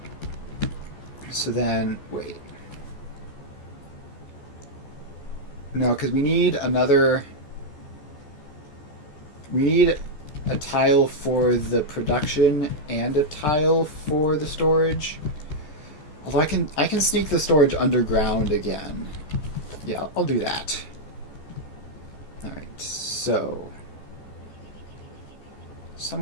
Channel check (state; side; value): late; right; 14 ms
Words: So then, wait. No, because we need another... We need a tile for the production and a tile for the storage. Although I can sneak the storage underground again. Yeah, I'll do that. Alright, so